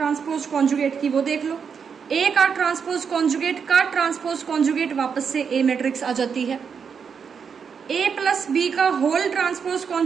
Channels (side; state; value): left; quieter; 6.5 dB